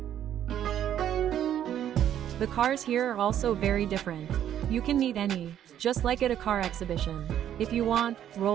The cars here are also very different. You can meet any, just like at a car exhibition. If you want,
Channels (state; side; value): quieter; left; 10.5 dB